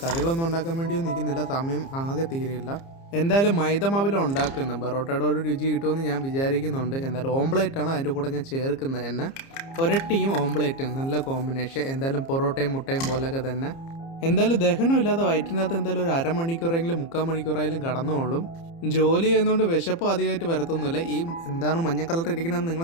കറികളൊന്നും ഉണ്ടാക്കാൻ വേണ്ടിയൊന്നും നിൽക്കുന്നില്ല, സമയം ആകെ തീരെയില്ല. എന്തായാലും മൈദമാവിലാണ് ഉണ്ടാക്കുന്നത്. ബറോട്ടയുടെ ഒരു രുചി കിട്ടുമെന്ന് ഞാൻ വിചാരിക്കുന്നുണ്ട്. എന്തായാലും ഓംപ്ലേറ്റാണ് അതിൻ്റെ കൂടെ ഞാൻ ചേർക്കുന്നത് തന്നെ. ഒരട്ടിയും ഓംപ്ലേറ്റും നല്ല കോമ്പിനേഷൻ. എന്തായാലും പൊറോട്ടയും മുട്ടയും പോലെയൊക്കെ തന്നെ. എന്തായാലും ദഹനമില്ലാതെ വയറ്റിനകത്ത് എന്തായാലും ഒരു അരമണിക്കൂറെങ്കിലും 3/4 മണിക്കൂറായാലും കടന്നോളും. ജോലി ചെയ്യുന്നതുകൊണ്ട് വിശപ്പ് അധികമായിട്ട് വരത്തൊന്നുമില്ല. ഈ എന്താണ് മഞ്ഞ കളർ ഇരിക്കണമെന്ന്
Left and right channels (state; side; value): late; right; 30 ms